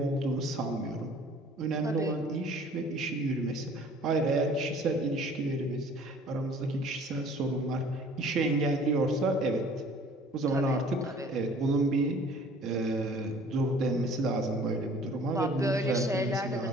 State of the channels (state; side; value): normal; both; correlation 0.52